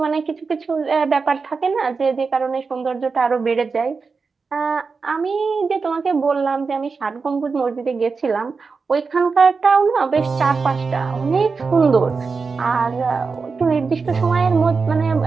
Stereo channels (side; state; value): left; quieter; 4.7 dB